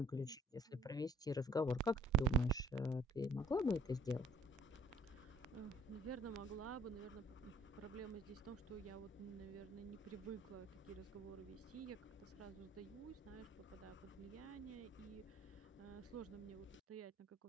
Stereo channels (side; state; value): both; normal; correlation 0.58